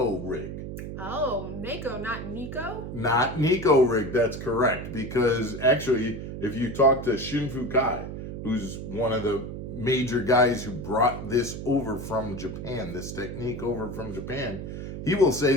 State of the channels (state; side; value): noise; right; hum, 7 dB below the sound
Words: Rig. Oh, Neko, not Nico? Not Neko Rig, that's correct. Because actually, if you talk to Shinfu Kai, who's one of the major guys who brought this over from Japan, this technique over from Japan, he will say